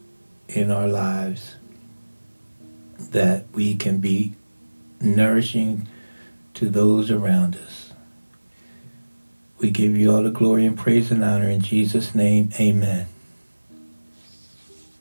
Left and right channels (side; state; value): both; inverted; correlation -1.00